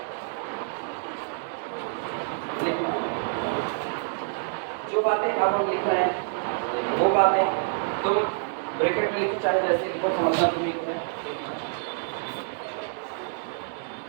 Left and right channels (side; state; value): left; silent; digital silence